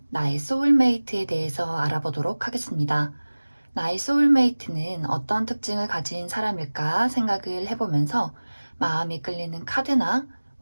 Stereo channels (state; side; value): inverted; both; correlation -1.00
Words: 나의 소울메이트에 대해서 알아보도록 하겠습니다. 나의 소울메이트는 어떤 특징을 가진 사람일까 생각을 해보면서 마음이 끌리는 카드나